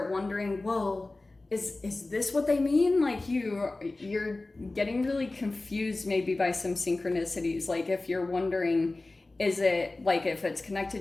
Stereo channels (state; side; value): quieter; right; 3.1 dB